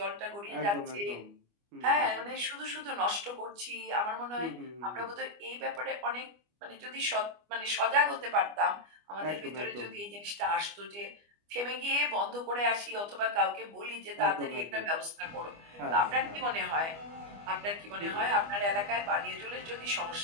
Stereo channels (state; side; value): late; left; 25 ms